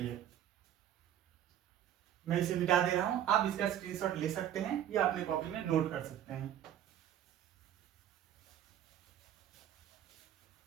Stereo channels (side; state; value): left; quieter; 10.8 dB